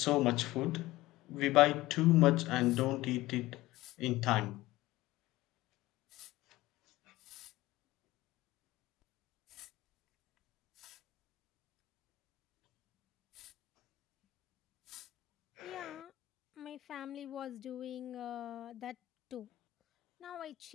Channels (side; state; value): right; quieter; 17.7 dB